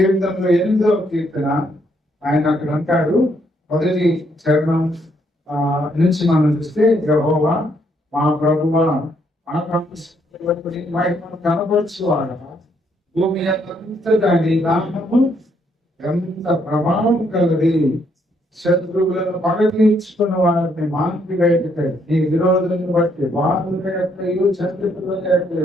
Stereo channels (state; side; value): normal; both; correlation 0.72